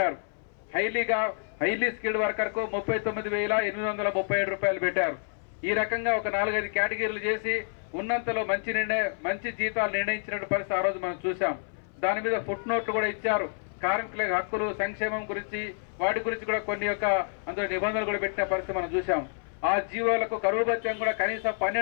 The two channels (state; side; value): silent; right; 57 dB below the other